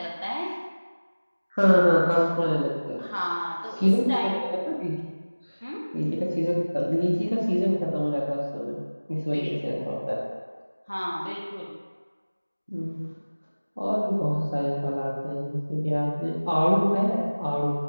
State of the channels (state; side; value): inverted; both; correlation -1.00